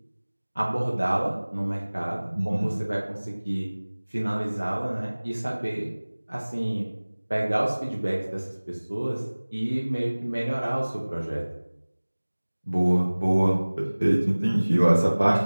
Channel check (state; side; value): inverted; both; correlation -1.00